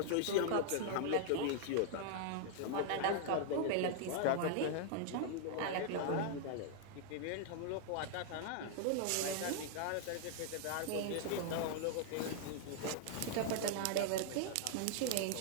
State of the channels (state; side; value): different; both; correlation -0.01